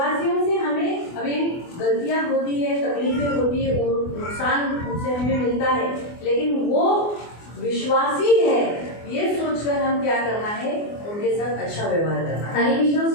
से हमें अभी गलतियाँ होती है, तकलीफें होती है, नुकसान उनसे हमें मिलता है, लेकिन वो विश्वासी है ये सोचकर हम क्या करना है? उनके साथ अच्छा व्यवहार करना है। आणि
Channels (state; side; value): late; right; 24 ms